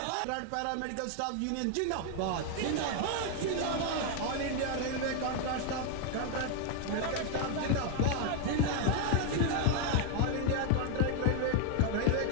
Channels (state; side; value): different; both; correlation 0.00